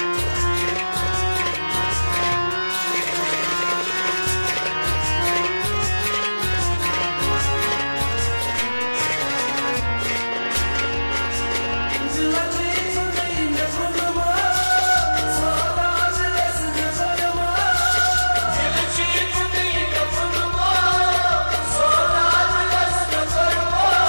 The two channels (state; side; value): inverted; both; correlation -1.00